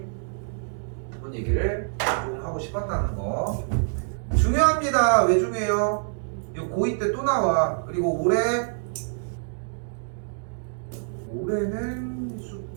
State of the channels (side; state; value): left; silent; digital silence